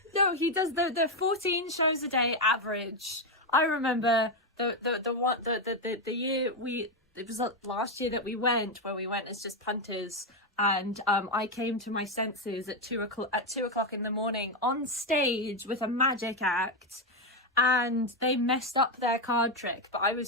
No, he does the 14 shows a day average. I remember the year it was last year that we went as just punters, and I came to my senses at 2:00 in the morning on stage with a magic act. And they messed up their card trick, but I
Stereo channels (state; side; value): normal; both; correlation 0.06